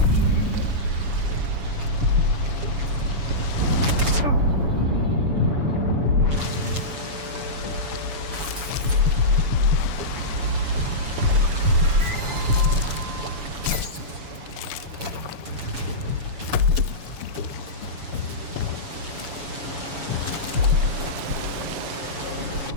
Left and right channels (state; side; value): late; left; 7.1 ms